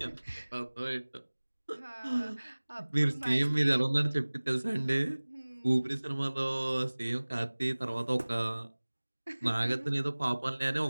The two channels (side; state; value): both; inverted; correlation -1.00